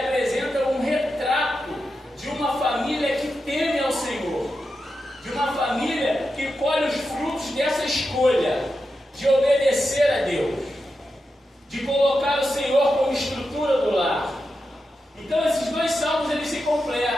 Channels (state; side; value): normal; both; correlation 0.89